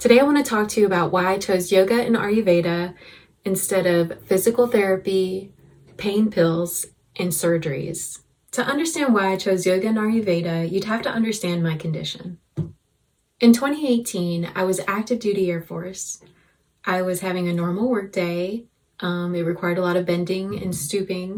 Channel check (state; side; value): identical; both; correlation 1.00